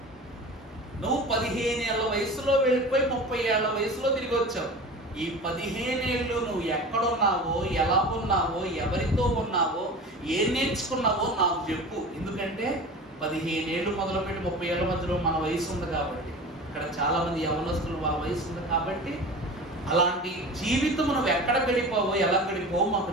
నువ్వు 15 ఏళ్ల వయసులో వెళ్ళిపోయి 30 ఏళ్ల వయసులో తిరిగి వచ్చావు. ఈ 15 ఏళ్ళు నువ్వు ఎక్కడున్నావో, ఎలా ఉన్నావో, ఎవరితో ఉన్నావో, ఏం నేర్చుకున్నావో నాకు చెప్పు. ఎందుకంటే 15 ఏళ్ళు మొదలుపెట్టి 30 ఏళ్ల మధ్యలో మన వయసు ఉంది కాబట్టి, ఇక్కడ చాలా మంది యవనస్తులు వాళ్ళ వయసు ఉంది కాబట్టి, అలాంటి జీవితం నువ్వు ఎక్కడ గడిపావో, ఎలా గడిపావో మాకు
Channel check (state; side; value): normal; both; correlation 0.35